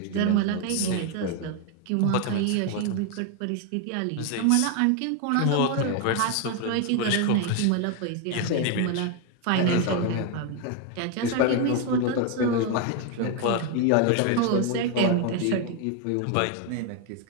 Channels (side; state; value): both; different; correlation 0.01